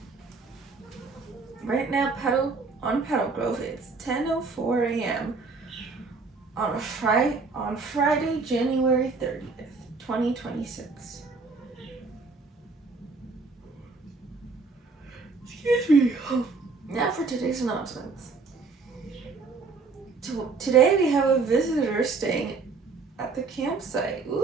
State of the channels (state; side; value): quieter; left; 4.2 dB